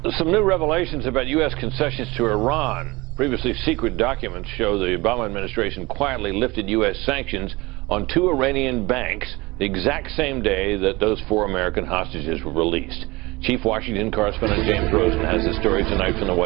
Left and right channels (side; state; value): left; quieter; 22.4 dB